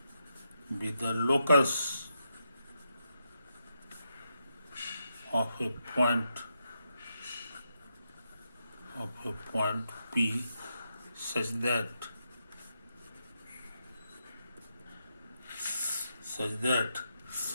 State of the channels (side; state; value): both; inverted; correlation -0.83